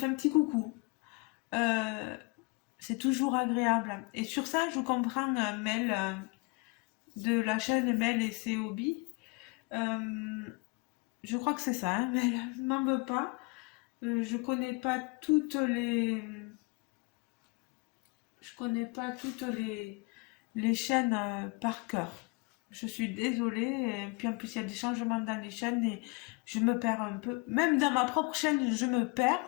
un petit coucou. C'est toujours agréable. Et sur ça, je comprends Mel de la chaîne Mel et ses hobbies. Je crois que c'est ça, hein, Mel, m'en veux pas. Je connais pas toutes les... Je connais pas toutes les chaînes par cœur. Je suis désolée. Et puis en plus, il y a des changements dans les chaînes et je me perds un peu. Même dans ma propre chaîne, je me perds.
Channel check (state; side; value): quieter; right; 28.8 dB